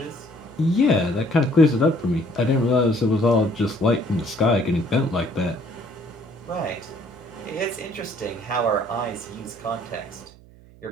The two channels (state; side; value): noise; right; hum, 23 dB below the sound